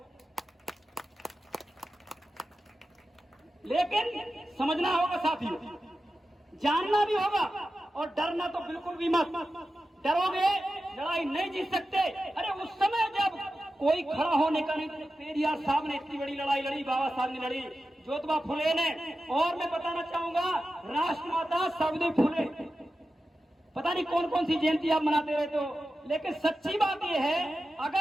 लेकिन समझना होगा साथियों, जानना भी होगा और डरना तो बिल्कुल भी मत। डरोगे लड़ाई नहीं जीत सकते। अरे उस समय जब कोई खड़ा होने का नहीं, तो पेरियार साहब ने इतनी बड़ी लड़ाई लड़ी, बाबा साहब ने लड़ी, ज्योतिबा फुले ने, और मैं बताना चाहूंगा राष्ट्रमाता सावित्री फुले, पता नहीं कौन कौन सी जयंती आप मनाते रहते हो। लेकिन सच्ची बात यह है,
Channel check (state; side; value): normal; both; correlation 0.93